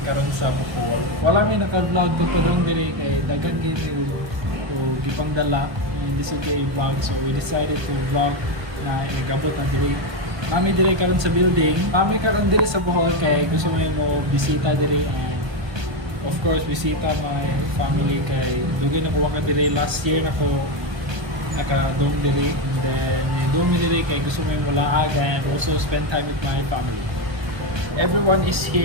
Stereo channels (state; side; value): late; left; 1.2 ms